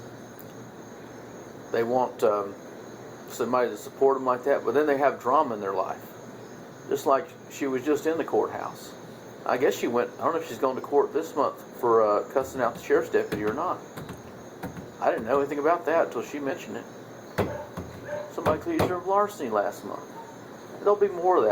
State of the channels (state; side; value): identical; both; correlation 1.00